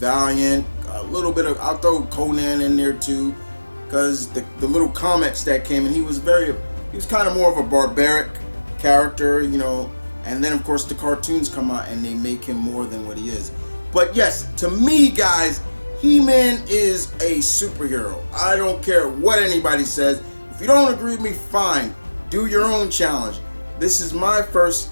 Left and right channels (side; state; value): both; inverted; correlation -1.00